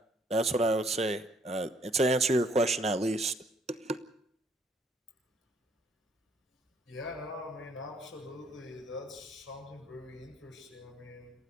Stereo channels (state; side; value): normal; both; correlation 0.64